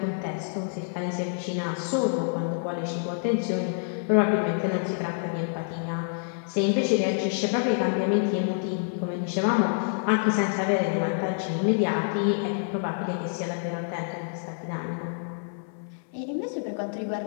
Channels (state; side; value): silent; right; 60 dB below the other